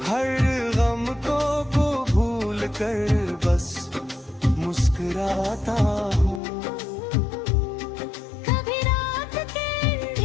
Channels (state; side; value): drops out; right; at 6.4 s